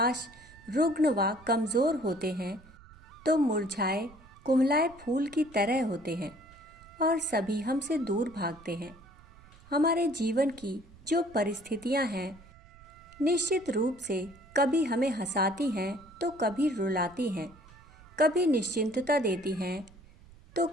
रुग्ण व कमज़ोर होते हैं, तो मुरझाए, कुम्हलाए फूल की तरह होते हैं और सभी हमसे दूर भागते हैं। हमारे जीवन की जो परिस्थितियां हैं, निश्चित रूप से कभी हमें हंसाती हैं तो कभी रुलाती हैं, कभी निश्चिंतता देती हैं तो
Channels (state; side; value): noise; right; rumble, 23 dB below the sound